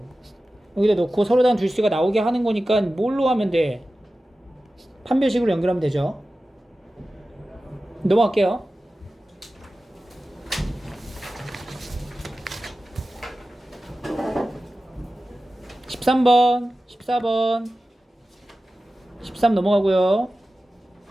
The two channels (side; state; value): both; normal; correlation 0.95